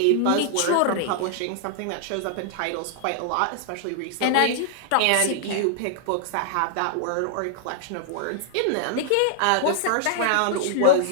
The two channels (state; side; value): different; both; correlation -0.01